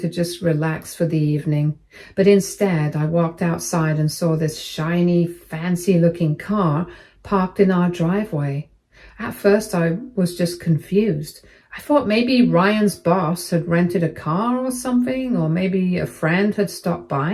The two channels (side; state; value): both; identical; correlation 1.00